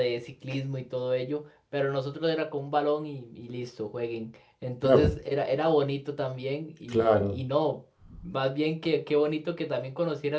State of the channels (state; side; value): identical; both; correlation 1.00